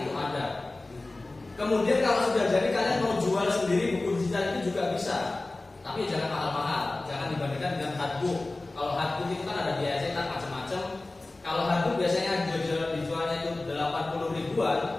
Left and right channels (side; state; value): right; quieter; 3.0 dB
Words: itu ada. Kemudian kalau sudah jadi kalian mau jual sendiri buku digital itu juga bisa. Tapi jangan mahal-mahal, jangan dibandingkan dengan hardbook. Kalau hardbook itu kan ada biaya cetak macam-macam. Kalau hardbook biasanya dijualnya itu 80